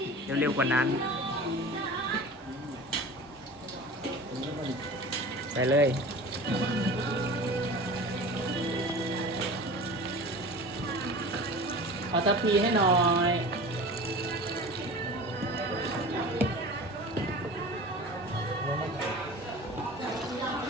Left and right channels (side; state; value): both; normal; correlation 0.37